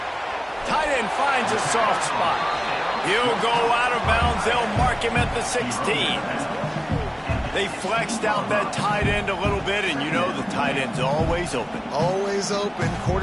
Tight end finds a soft spot. He'll go out of bounds. They'll mark him at the 16. They flexed out that tight end a little bit, and you know the tight end's always open. Always open.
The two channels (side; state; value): both; identical; correlation 1.00